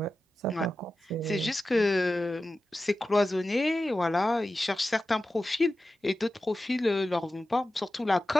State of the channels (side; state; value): both; normal; correlation 0.93